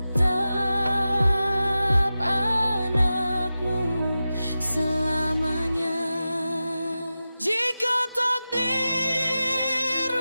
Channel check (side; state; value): both; inverted; correlation -0.93